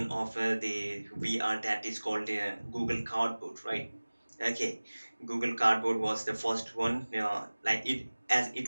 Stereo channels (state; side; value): inverted; both; correlation -1.00